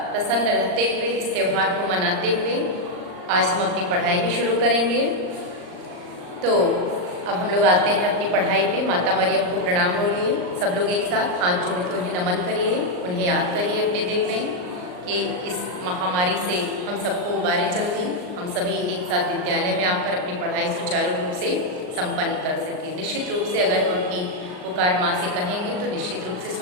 प्रसन्न रहते हुए इस त्यौहार को मनाते हुए आज हम अपनी पढ़ाई भी शुरू करेंगे। तो अब हम लोग आते हैं अपनी पढ़ाई पे। माता मरियम को प्रणाम बोलिए सब लोग एक साथ, हाथ जोड़ के उन्हें नमन करिए, उन्हें याद करिए अपने दिल में कि इस महामारी से हम सबको उबारे जल्दी, हम सभी एक साथ विद्यालय में आकर अपनी पढ़ाई सुचारू रूप से संपन्न कर सकें। निश्चित रूप से अगर हम अपनी पुकार माँ से कहेंगे तो निश्चित रूप से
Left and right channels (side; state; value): left; late; 39 ms